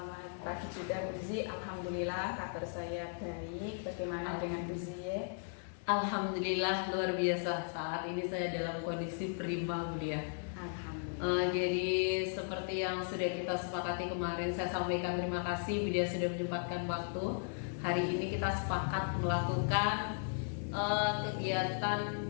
pagi juga, Bu Zi. Alhamdulillah kabar saya baik. Bagaimana dengan Bu Zi? Alhamdulillah luar biasa. Saat ini saya dalam kondisi prima, Bu Lia. Alhamdulillah. Jadi seperti yang sudah kita sepakati kemarin, saya sampaikan terima kasih Bu Lia sudah menyempatkan waktu. Hari ini kita sepakat melakukan kegiatan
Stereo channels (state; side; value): silent; right; digital silence